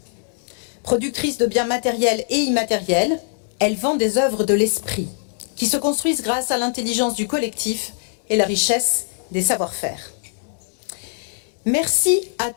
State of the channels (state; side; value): silent; right; digital silence